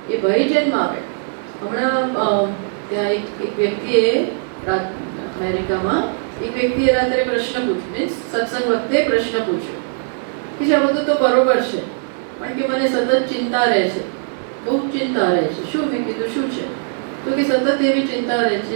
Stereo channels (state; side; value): silent; left; 59 dB below the other